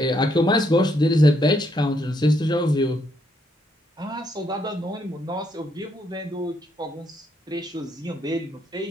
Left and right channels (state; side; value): normal; both; correlation 0.74